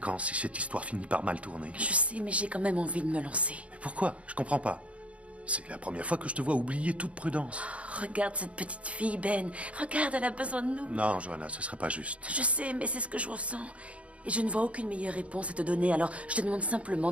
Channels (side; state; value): left; late; 0.063 ms